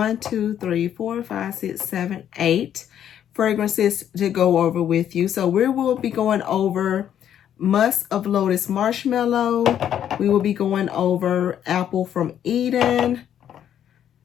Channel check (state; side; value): quieter; right; 9.9 dB